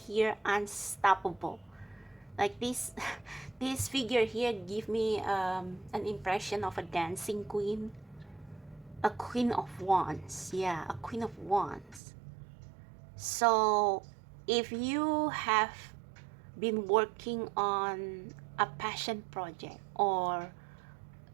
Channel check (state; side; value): drops out; left; at 12.0 s